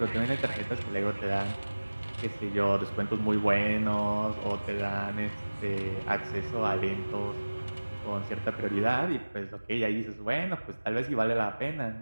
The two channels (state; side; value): inverted; both; correlation -1.00